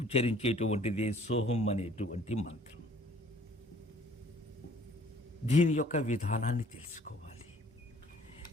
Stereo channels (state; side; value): normal; both; correlation 0.56